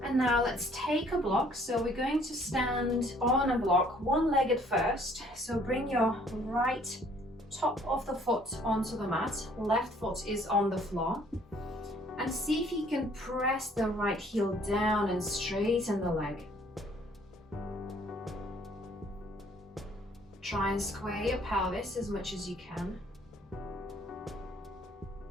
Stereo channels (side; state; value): both; normal; correlation 0.60